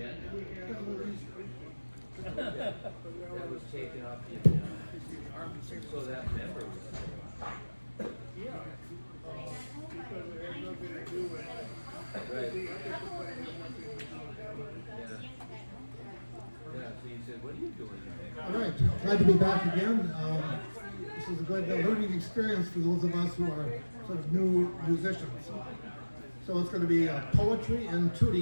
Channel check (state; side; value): inverted; both; correlation -1.00